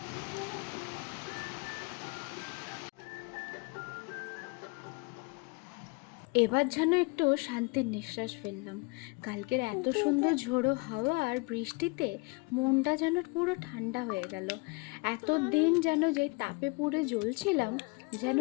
এবার যেন একটু শান্তির নিঃশ্বাস ফেললাম। কালকের এত সুন্দর ঝোড়ো হাওয়া আর বৃষ্টিতে মনটা যেন পুরো ঠান্ডা হয়ে গেল। এতদিন যেন যে তাপে পুড়ে জ্বলছিলাম, যেন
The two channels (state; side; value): quieter; right; 28.9 dB